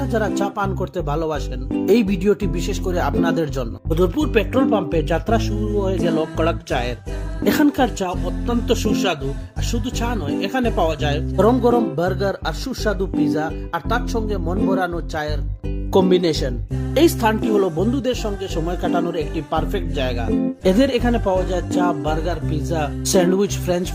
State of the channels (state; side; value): identical; both; correlation 1.00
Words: যারা চা পান করতে ভালোবাসেন, এই ভিডিওটি বিশেষ করে আপনাদের জন্য। বদরপুর পেট্রোল পাম্পে যাত্রা শুরু হয়ে গেল কড়ক চায়ের। এখানকার চা অত্যন্ত সুস্বাদু, আর শুধু চা নয়, এখানে পাওয়া যায় গরম গরম বার্গার আর সুস্বাদু পিজা, আর তার সঙ্গে মন ভরানো চায়ের কম্বিনেশন। এই স্থানটি হলো বন্ধুদের সঙ্গে সময় কাটানোর একটি পারফেক্ট জায়গা। এদের এখানে পাওয়া যায় চা, burger, pizza, sandwich, French